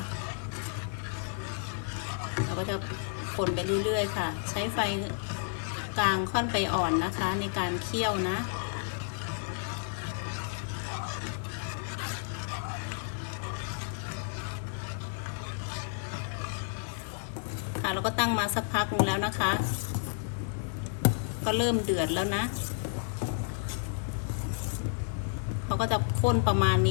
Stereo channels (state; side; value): silent; right; digital silence